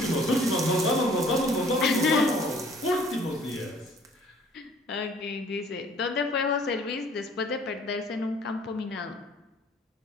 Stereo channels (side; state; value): both; normal; correlation 0.55